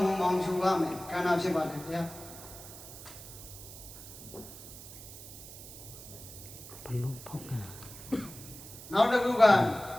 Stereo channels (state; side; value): noise; right; hiss, 14 dB below the sound